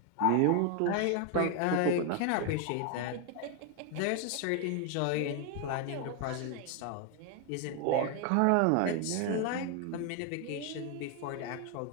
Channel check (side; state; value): both; different; correlation 0.01